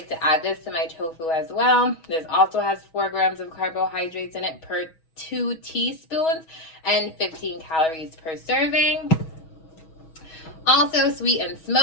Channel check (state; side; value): late; right; 6.2 ms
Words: to add this to my tofu as well. This also has 4 grams of carbohydrates in it per 2 teaspoons and 15 calories per serving. Also, sweet and